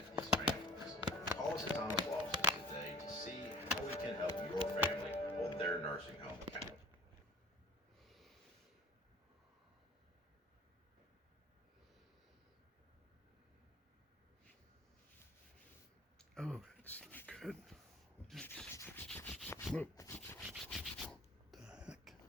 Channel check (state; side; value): normal; both; correlation 0.46